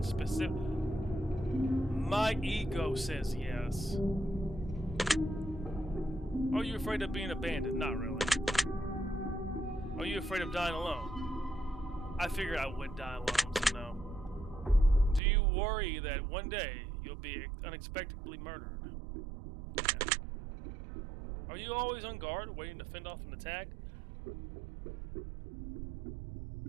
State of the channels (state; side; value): drops out; left; at 15.2 s